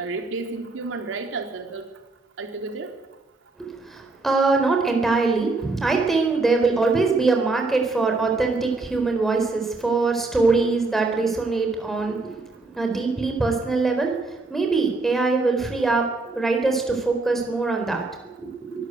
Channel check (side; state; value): left; quieter; 3.5 dB